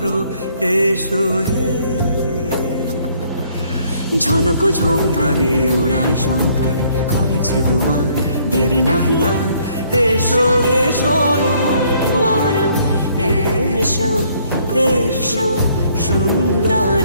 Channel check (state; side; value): inverted; both; correlation -0.64